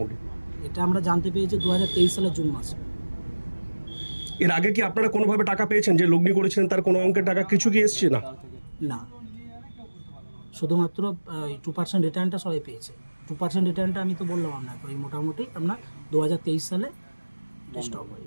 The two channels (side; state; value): both; inverted; correlation -1.00